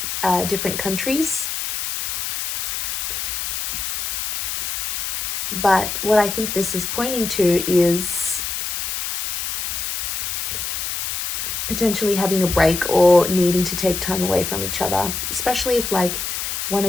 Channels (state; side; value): noise; left; hiss, 3 dB below the sound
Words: different countries. But what I think this is pointing to is potentially having a break or needing to take time away from each other, especially if like one